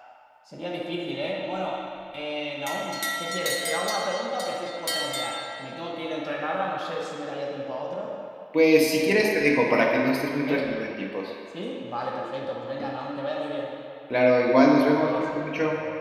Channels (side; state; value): both; identical; correlation 1.00